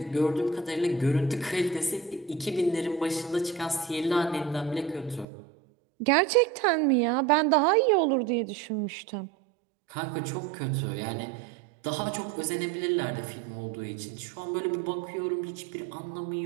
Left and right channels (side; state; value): left; drops out; at 5.2 s